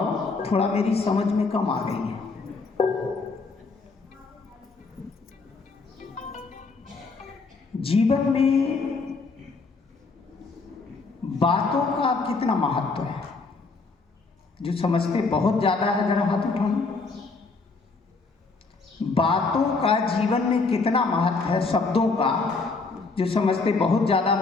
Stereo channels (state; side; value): quieter; right; 4.1 dB